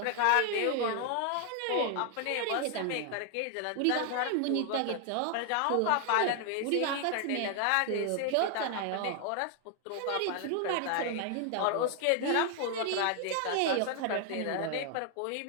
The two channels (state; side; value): different; both; correlation 0.00